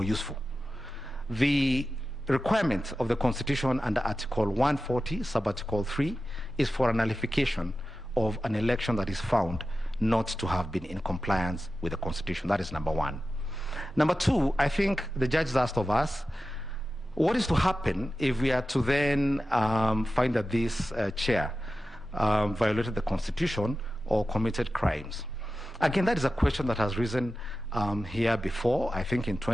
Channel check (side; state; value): both; normal; correlation 0.93